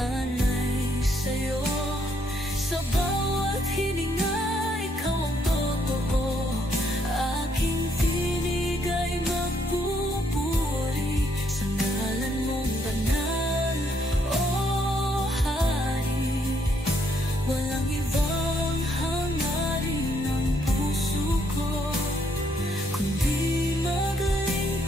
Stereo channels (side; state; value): both; normal; correlation 0.72